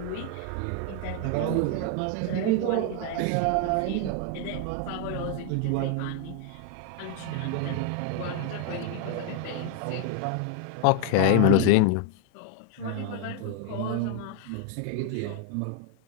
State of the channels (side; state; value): both; different; correlation 0.01